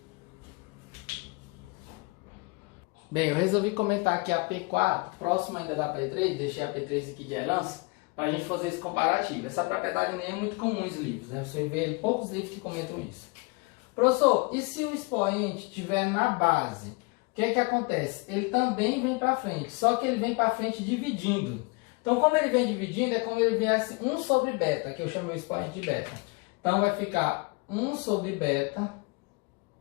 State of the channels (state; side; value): quieter; right; 29.0 dB